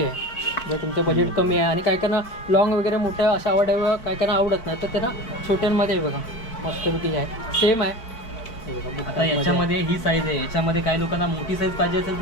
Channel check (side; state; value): right; late; 4.5 ms